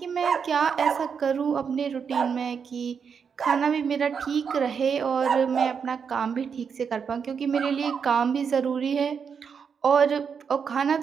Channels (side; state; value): left; quieter; 6.5 dB